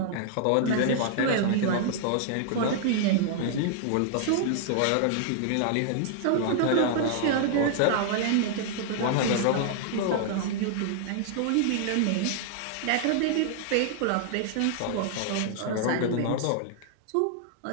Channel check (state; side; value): different; both; correlation -0.01